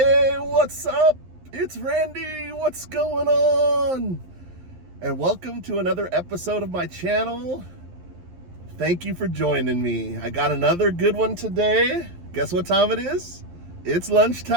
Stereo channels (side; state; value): left; late; 11 ms